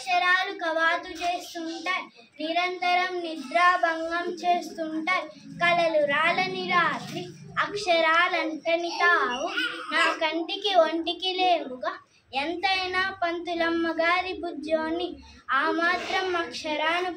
కవాతు చేస్తుంటాయి. నిరంతరం నిద్రాభంగం చేస్తుంటాయి. కలలు రాలని రాత్రి అక్షరాలంటని తావు నా కంటికి ఒంటికి లేవుగా. ఎంతైనా పంతులమ్మ గారి బుజ్జోని ఆ మాత్రం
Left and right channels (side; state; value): both; identical; correlation 1.00